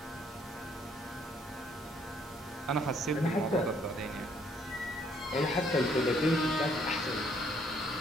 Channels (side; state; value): both; normal; correlation 0.66